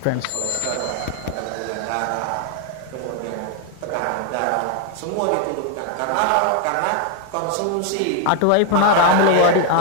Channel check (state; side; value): different; both; correlation 0.01